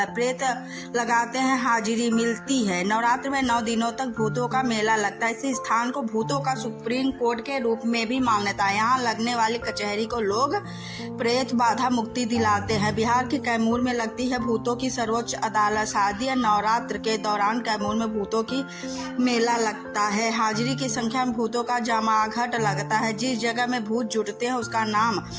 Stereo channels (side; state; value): both; identical; correlation 1.00